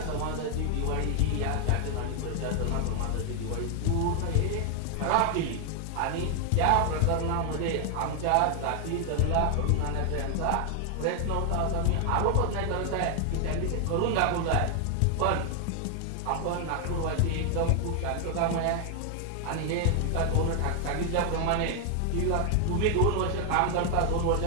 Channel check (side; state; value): both; different; correlation 0.00